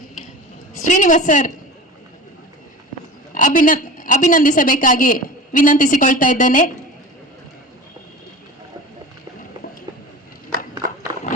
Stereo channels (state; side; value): normal; both; correlation 0.35